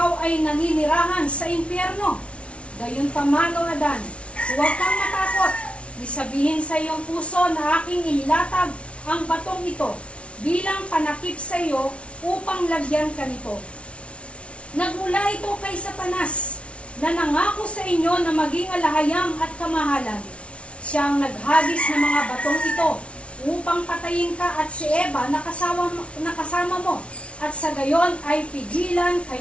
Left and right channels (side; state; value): right; late; 0.061 ms